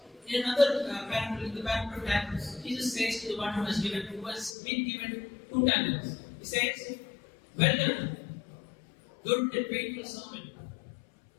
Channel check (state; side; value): drops out; right; at 4.5 s